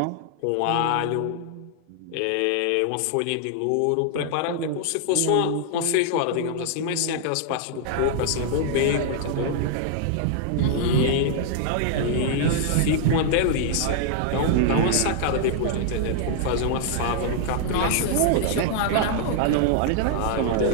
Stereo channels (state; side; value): different; both; correlation -0.01